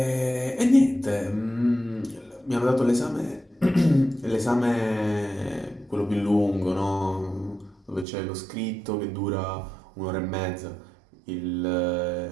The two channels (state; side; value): drops out; left; at 8.1 s